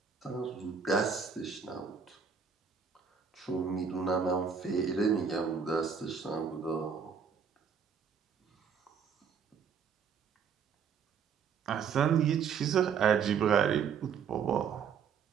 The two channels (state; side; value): quieter; left; 6.6 dB